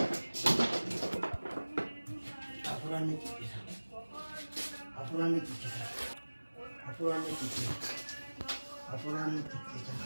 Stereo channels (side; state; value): both; inverted; correlation -1.00